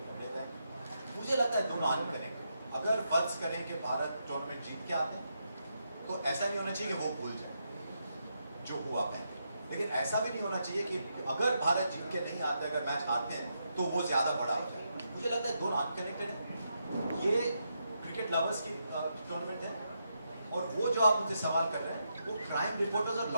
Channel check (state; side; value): inverted; both; correlation -0.82